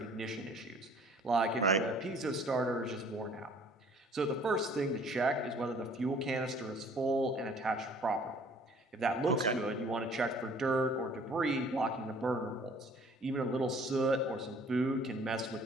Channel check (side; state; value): both; normal; correlation 0.54